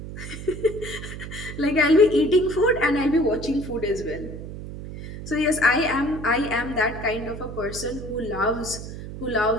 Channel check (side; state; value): right; noise; hum, 10 dB below the sound